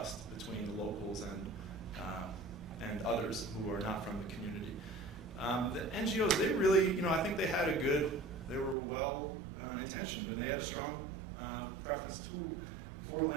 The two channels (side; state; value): left; drops out; at 8.8 s